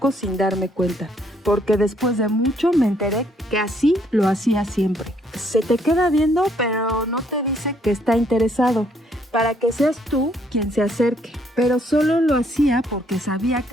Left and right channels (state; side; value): normal; both; correlation 0.68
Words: sin darme cuenta. Porque después de mucho me enteré que así lo hacía siempre. Se te queda viendo, pero no te dice que está interesado, para que seas tú quien se acerque. Pero solo lo hacía porque sabía